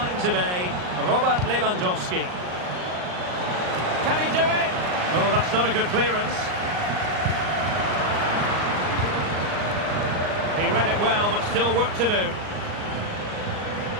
today, Robert Lewandowski. Can he do it? Oh, that's not a good clearance. He read it well, but still work to do.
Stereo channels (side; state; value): left; late; 39 ms